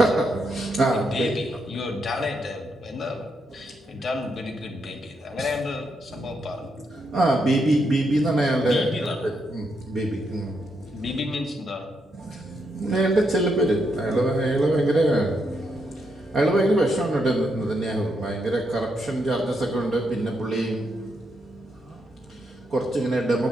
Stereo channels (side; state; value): both; normal; correlation 0.80